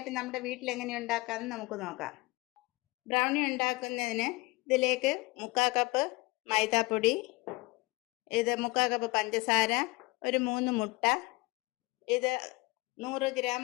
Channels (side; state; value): right; quieter; 23.7 dB